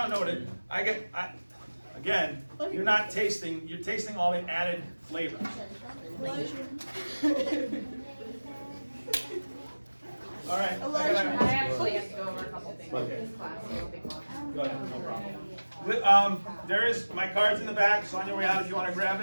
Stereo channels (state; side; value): inverted; both; correlation -1.00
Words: know what it. Again, you're not tasting. You're tasting all the added flavor. All right. I actually have to go over a couple things in this class, so it'll be long. Go ahead, no problem. There is my card's in the back. So on your way out, if you want to grab